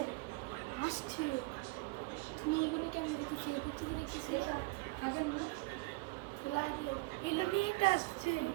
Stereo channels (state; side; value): quieter; left; 25.0 dB